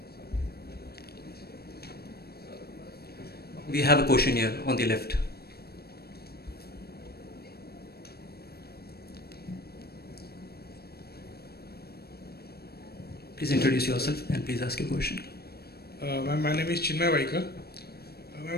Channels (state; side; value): late; right; 0.46 ms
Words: We have a question here on the left. Please introduce yourself and please ask your question. My name is Chinmay Vaikar.